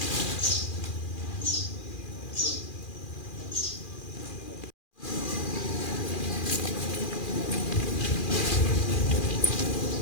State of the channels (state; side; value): late; right; 2.4 ms